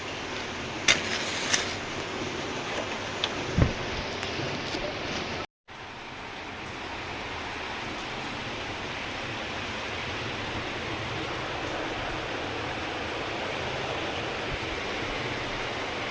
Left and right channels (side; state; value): both; identical; correlation 1.00